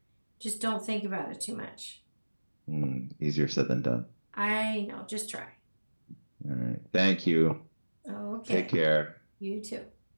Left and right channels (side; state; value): both; inverted; correlation -1.00